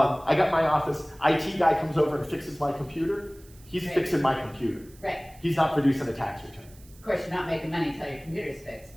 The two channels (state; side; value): noise; right; hiss, 25 dB below the sound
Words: got my office, IT guy comes over and fixes my computer. He's Right. fixing my computer. Right. He's not producing a tax return. Of course, you're not making money until your computer's fixed,